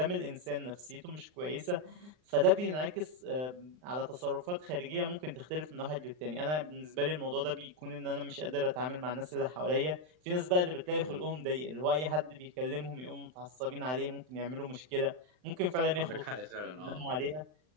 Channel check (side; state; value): left; late; 39 ms